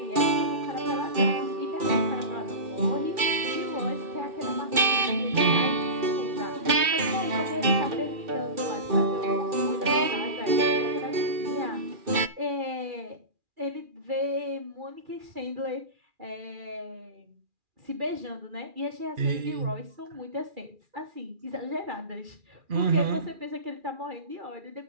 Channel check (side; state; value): left; late; 2.4 ms